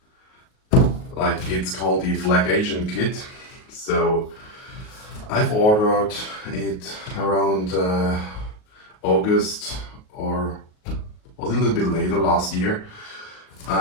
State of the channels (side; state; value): right; late; 38 ms